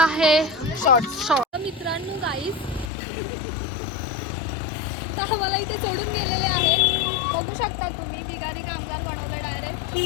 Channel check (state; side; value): drops out; right; at 2.9 s